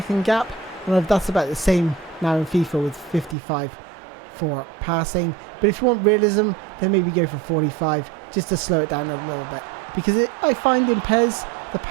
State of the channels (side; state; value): left; drops out; at 3.4 s